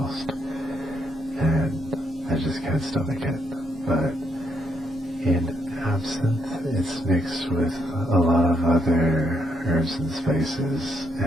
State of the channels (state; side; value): normal; both; correlation 0.76